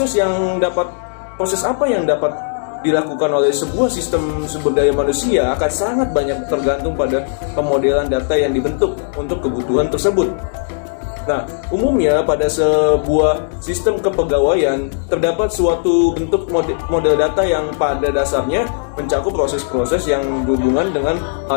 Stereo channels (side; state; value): right; silent; digital silence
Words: apa yang dapat dilakukan oleh sebuah sistem sumber daya manusia akan sangat banyak tergantung pada pemodelan data yang dibentuk untuk kebutuhan tersebut. Nah, umumnya pada sebuah sistem kepegawaian terdapat suatu bentuk model data yang pada dasarnya mencakup proses-proses yang berhubungan dengan